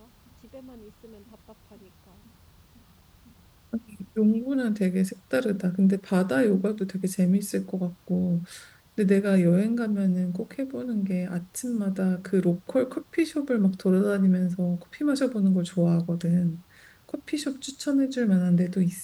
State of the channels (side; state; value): both; identical; correlation 1.00